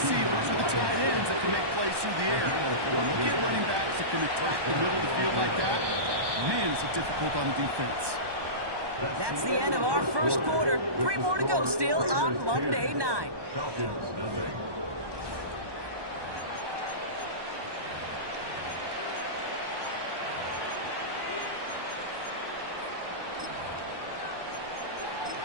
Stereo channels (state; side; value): late; left; 1.2 ms